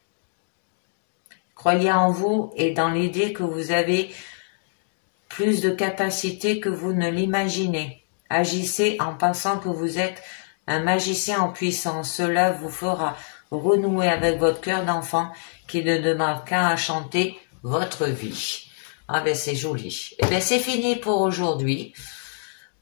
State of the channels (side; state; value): right; silent; digital silence